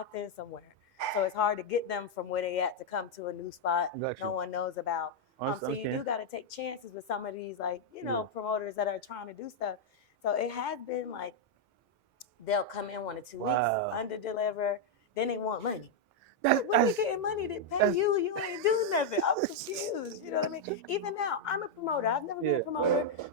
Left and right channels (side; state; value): both; normal; correlation -0.02